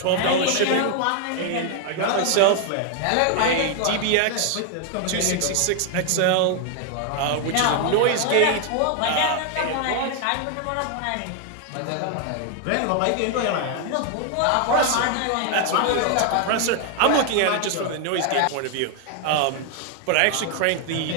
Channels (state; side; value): different; both; correlation 0.00